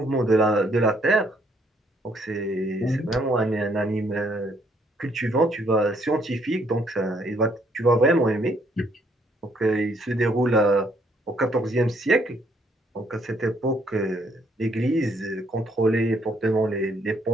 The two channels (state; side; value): normal; both; correlation 0.68